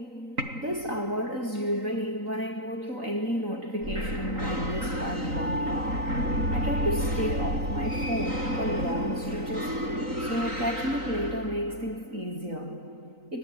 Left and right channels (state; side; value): late; left; 3.9 ms